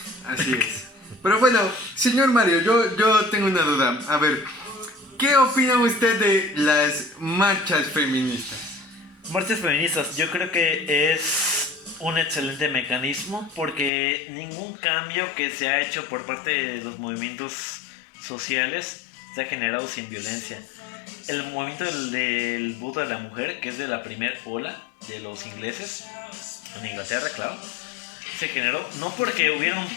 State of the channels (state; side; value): drops out; right; at 13.9 s